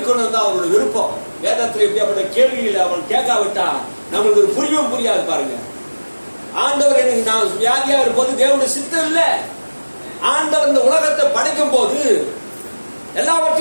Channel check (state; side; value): inverted; both; correlation -1.00